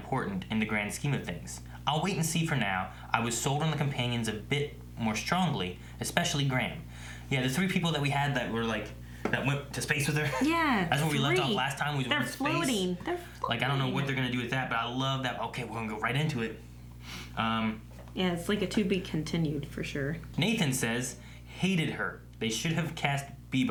in the grand scheme of things. I'll wait and see for now. I was sold on the companions a bit more strongly, especially Graham. Yeah, the 3 people that we had that were like, that went to space with her. Yeah. That's where we left off last time. They're floating. They're floating. Like, I don't know what they're going to do with that, but I love that. Okay, we're going to go right into it. Yeah, it's like a to be continued for sure. Nathan says, "Hated her. They should have cast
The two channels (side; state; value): both; identical; correlation 1.00